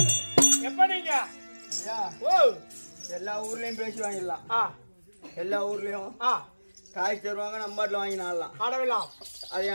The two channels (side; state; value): both; inverted; correlation -1.00